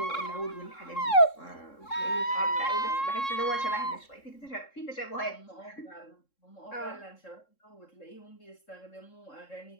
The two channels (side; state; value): right; late; 3.7 ms